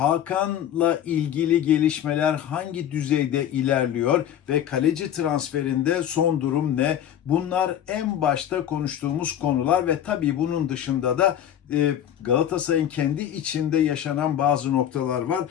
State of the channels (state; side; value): quieter; right; 10.4 dB